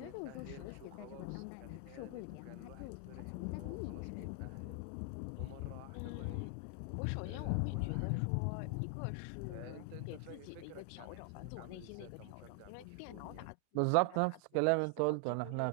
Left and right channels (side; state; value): both; different; correlation 0.00